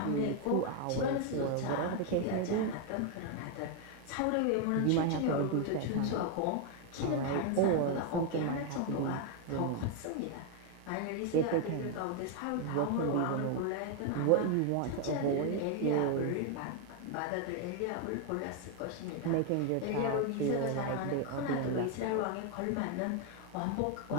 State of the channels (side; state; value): both; different; correlation 0.01